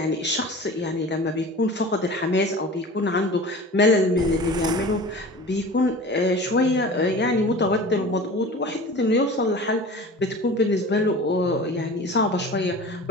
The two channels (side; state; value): both; normal; correlation 0.38